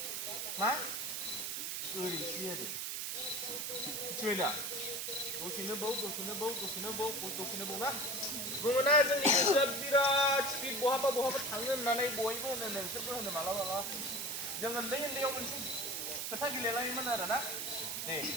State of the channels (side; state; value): right; noise; hiss, 2 dB below the sound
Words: मा ओरैसो आरो मिथिबाय दा दसेनो बाव ना बुङोना जोंनि गोसोआ बिराद स्पिड बहाबा थाङो होननानै बयबो होनो नोंसोरबो होनो मालाबा जों उन्दैयाव मोनसे खोथा गेलेलायोमोन आरो ना दे